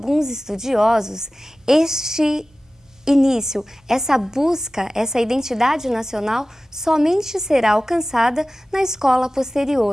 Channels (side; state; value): both; normal; correlation 0.96